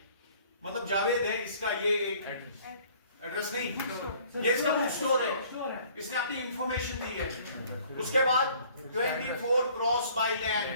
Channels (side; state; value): both; inverted; correlation -0.55